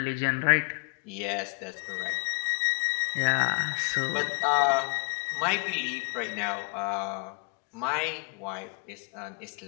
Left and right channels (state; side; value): quieter; right; 35.8 dB